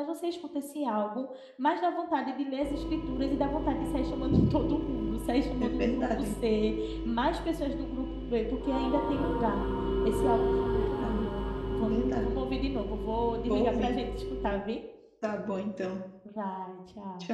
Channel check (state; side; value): identical; both; correlation 1.00